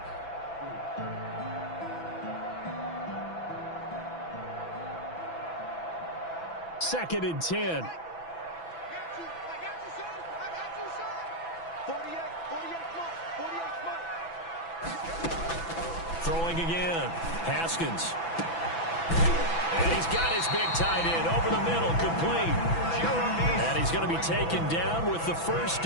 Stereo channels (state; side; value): late; right; 6.0 ms